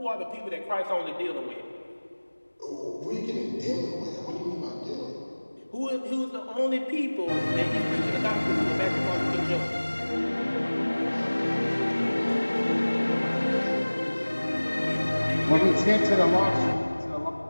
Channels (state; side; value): inverted; both; correlation -1.00